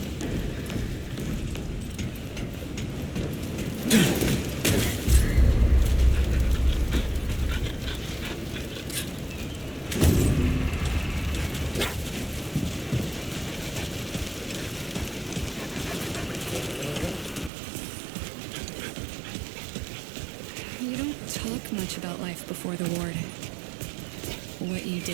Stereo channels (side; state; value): left; drops out; at 17.5 s